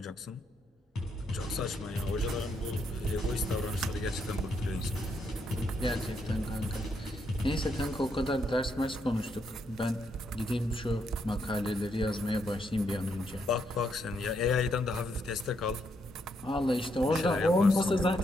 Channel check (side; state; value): both; normal; correlation 0.77